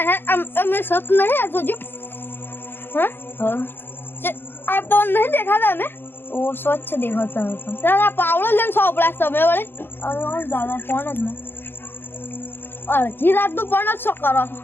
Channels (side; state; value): right; late; 0.098 ms